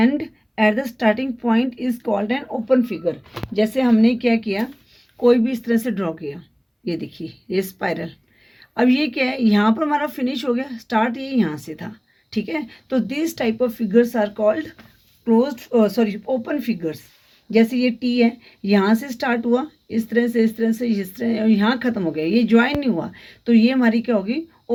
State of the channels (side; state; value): both; identical; correlation 1.00